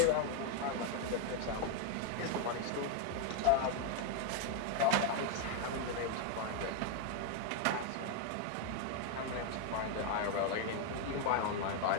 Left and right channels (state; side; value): different; both; correlation 0.00